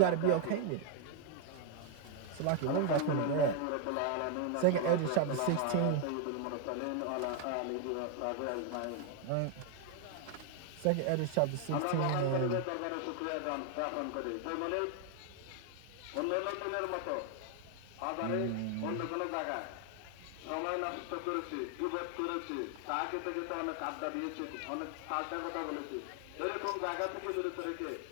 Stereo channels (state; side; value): different; both; correlation 0.00